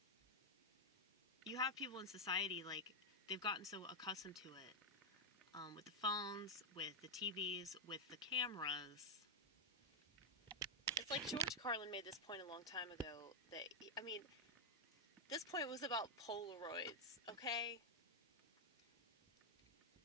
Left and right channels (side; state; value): both; normal; correlation -0.01